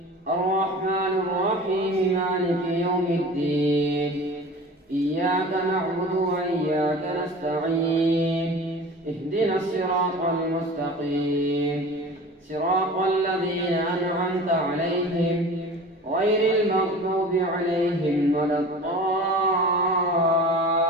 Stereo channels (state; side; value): normal; both; correlation 0.39